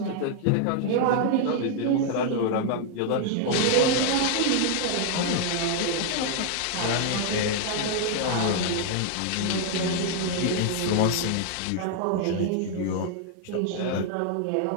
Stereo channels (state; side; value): different; both; correlation 0.00